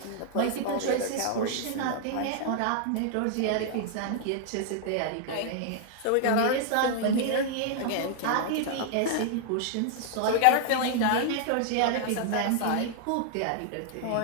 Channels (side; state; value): both; different; correlation 0.00